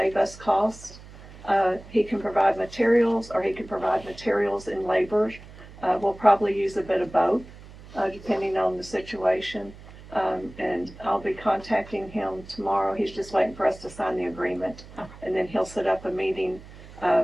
us costs. He can provide materials, or he can provide materials and labor. We'll probably use a bit of both, depending on the situation. And I'll be contacting him tomorrow. He's just waiting for us to sign the agreement. And then he'll set up a meeting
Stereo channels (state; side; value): noise; right; hum, 18 dB below the sound